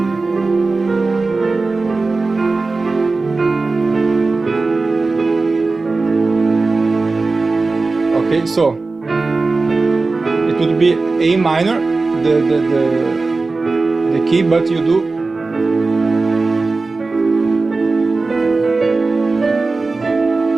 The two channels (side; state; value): left; quieter; 3.7 dB